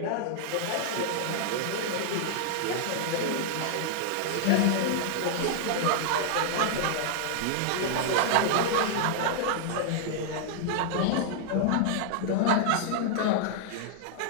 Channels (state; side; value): different; both; correlation -0.01